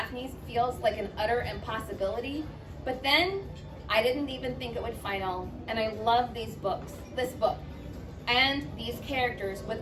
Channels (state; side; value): identical; both; correlation 1.00